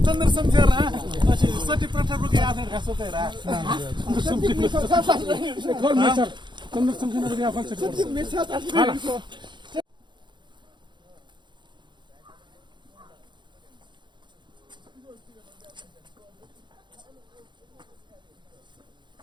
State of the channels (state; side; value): late; left; 0.22 ms